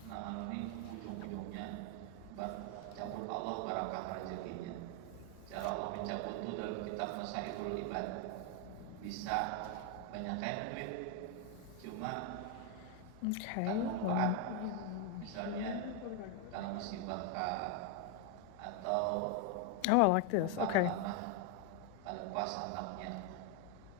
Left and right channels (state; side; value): different; both; correlation 0.01